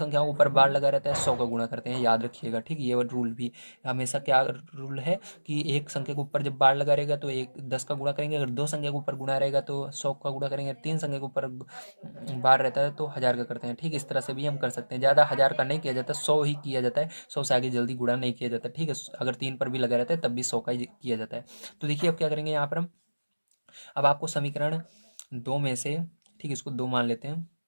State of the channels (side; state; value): both; inverted; correlation -1.00